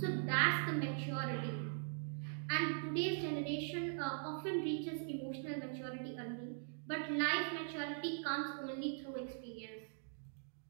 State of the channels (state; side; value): silent; left; digital silence